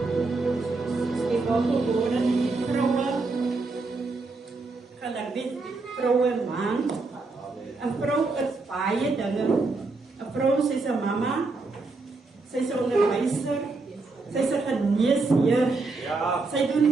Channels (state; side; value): quieter; left; 3.7 dB